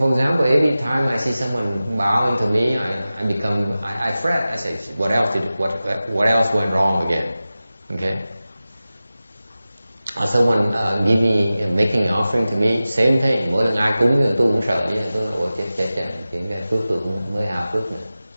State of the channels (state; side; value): inverted; both; correlation -0.96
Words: example, every time I see someone bowing to me, I fret. I say, what else went wrong again? Okay. Or someone making an offering to me, same thing. Mỗi lần ai cúng thì tôi cũng sợ vậy. Tôi ôi chết, cái phước tôi cũng mới hao phước nữa.